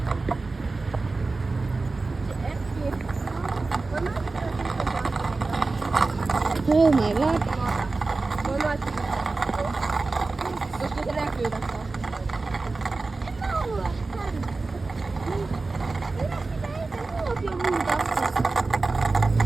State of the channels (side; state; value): left; quieter; 3.6 dB